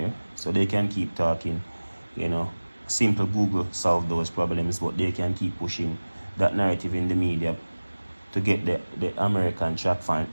so they can keep talking. Simple Google solve those problems, but they can keep pushing that narrative in the media to get the American track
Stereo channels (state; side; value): inverted; both; correlation -1.00